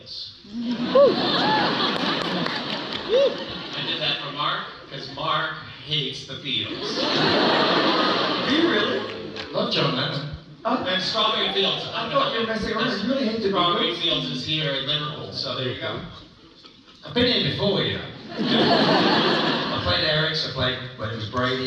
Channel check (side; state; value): both; identical; correlation 1.00